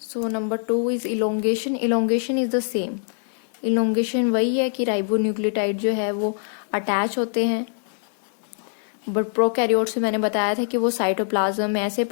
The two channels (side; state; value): right; silent; 63 dB below the other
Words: number 2 is elongation. Elongation is the same. Elongation वही है कि राइबोन्यूक्लियोटाइड जो है वो अटैच होते हैं, बट प्रोकैरियोट्स में मैंने बताया था कि वो साइटोप्लाज्म में ऐसे